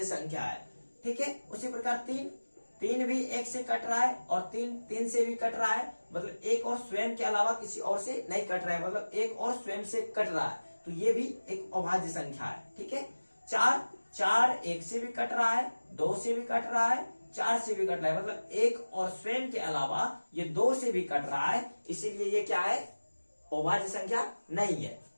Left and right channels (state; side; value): inverted; both; correlation -1.00